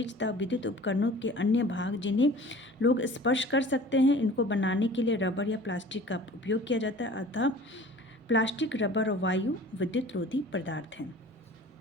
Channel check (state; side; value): normal; both; correlation 0.45